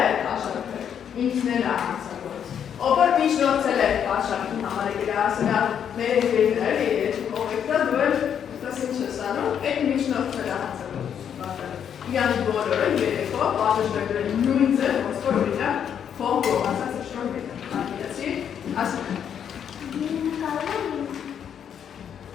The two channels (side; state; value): right; quieter; 8.5 dB